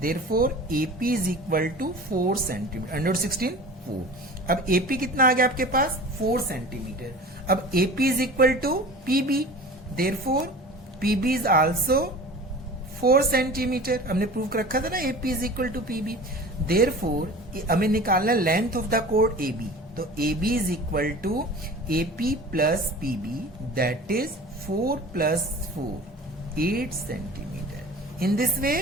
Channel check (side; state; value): both; normal; correlation 0.39